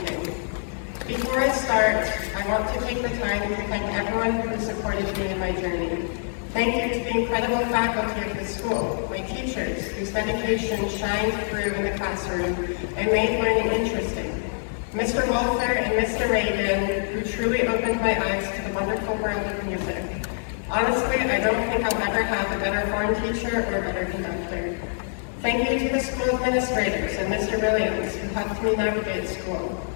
Before I start, I want to take the time to thank everyone who supported me in my journey. Thank you to the incredible faculty of the school, my teachers, whose dedication shined through in the classroom and made learning interesting. Mr. Walther and Mr. Reagan, who truly opened my eyes to the wonderful world of music. Honestly, I don't think I'll ever have a better horn teacher or a better conductor. Thank you to the school administrators and Mr. Williams, who helped me navigate school.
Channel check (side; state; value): right; silent; 62 dB below the other